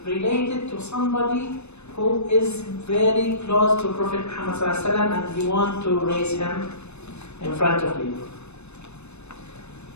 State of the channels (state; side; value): late; right; 0.81 ms